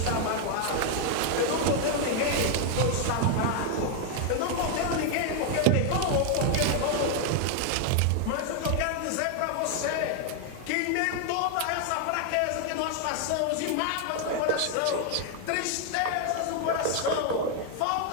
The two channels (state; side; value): different; both; correlation 0.00